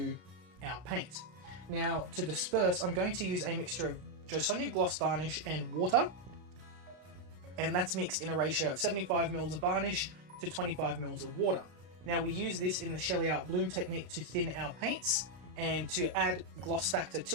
our paint. Now to disperse, I'm going to use a mixture of Joe Sonia gloss varnish and water, and that's mixed in a ratio of 75 ml of varnish to 25 ml of water. Now we use this in the Sheleeart Bloom technique to thin our paints and to add gloss factor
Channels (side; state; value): left; late; 33 ms